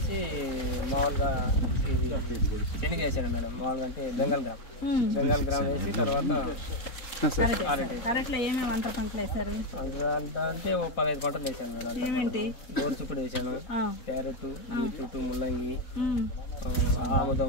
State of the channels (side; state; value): right; late; 4.0 ms